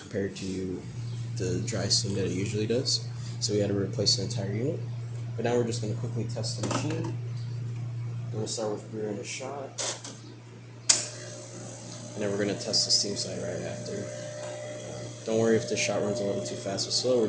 to the dry steam that it usually does. So we had to replace the entire unit. But now we're just going to quickly test the machine. I'm going to start with brewing a shot. And then we're going to test the steam side right after. Don't worry if the shot runs a little too fast or slow.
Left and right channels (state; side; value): identical; both; correlation 1.00